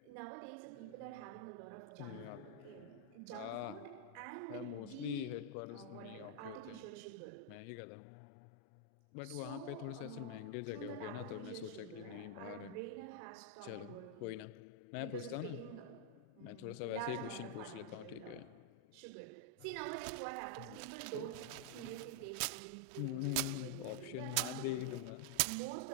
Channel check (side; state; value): both; different; correlation -0.01